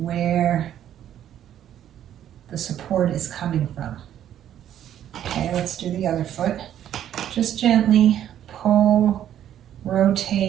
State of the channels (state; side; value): quieter; left; 10.8 dB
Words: where the support is coming from. Okay, let's do the other foot. Just gently pull,